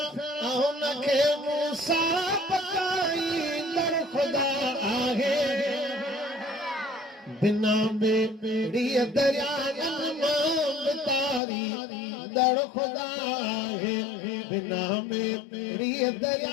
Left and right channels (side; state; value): right; drops out; at 11.4 s